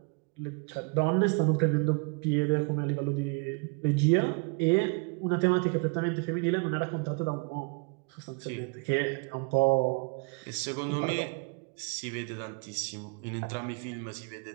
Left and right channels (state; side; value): quieter; left; 32.4 dB